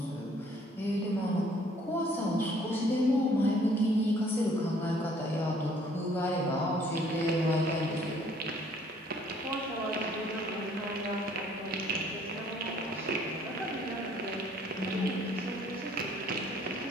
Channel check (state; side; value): normal; both; correlation 0.60